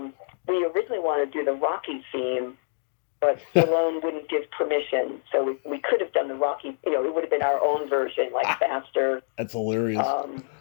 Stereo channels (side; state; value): right; silent; 61 dB below the other